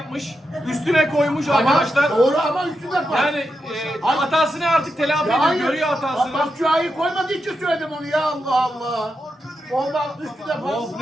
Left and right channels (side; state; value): both; normal; correlation 0.87